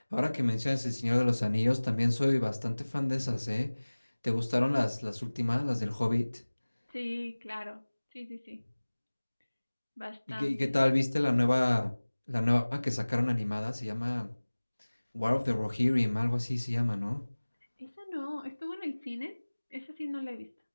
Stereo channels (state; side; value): inverted; both; correlation -1.00